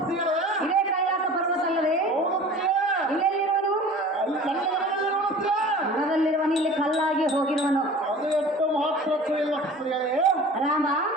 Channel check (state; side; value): normal; both; correlation 0.42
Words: ಇದೇ ಕೈಲಾಸ ಪರ್ವತ ಅಲ್ಲವೇ ಹೌದುತ್ತೀಯೇ? ಇಲ್ಲೆಲ್ಲಿರುವನು ಅಲ್ಲಿ ನನ್ನ ಮನೆಯಲ್ಲಿ ನೋಡುತ್ತೀಯೇ? ಮನದಲ್ಲಿರುವನು ಇಲ್ಲಿ ಕಲ್ಲಾಗಿ ಹೋಗಿರುವನು ಅದು ಎಷ್ಟು ಮಹತ್ವಕ್ಕೂ ಇಲ್ಲ ಸ್ತ್ರೀಯರೇ. ರಾಮ